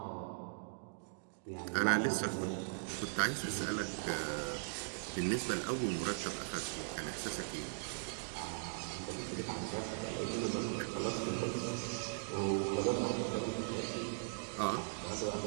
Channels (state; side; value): silent; left; digital silence